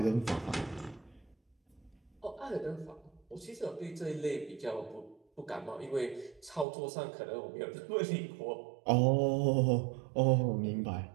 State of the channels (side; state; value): left; drops out; at 6.7 s